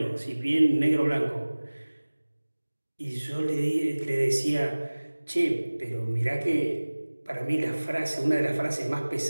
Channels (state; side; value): inverted; both; correlation -1.00